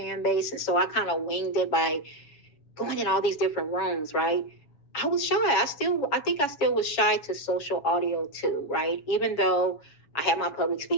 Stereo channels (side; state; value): right; late; 7.1 ms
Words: and so I kind of winged it by going in all these different rooms, right? I was shy. I think I still was shy to social audio too, right? Even though I have my public